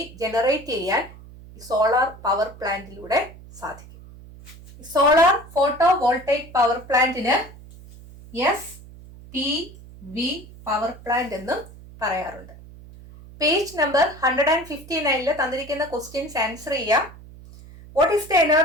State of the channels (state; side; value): noise; right; hum, 19 dB below the sound